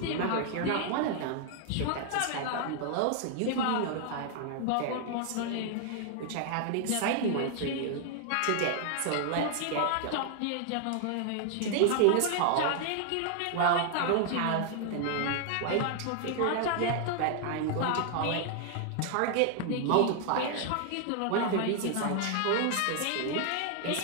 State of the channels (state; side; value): different; both; correlation 0.00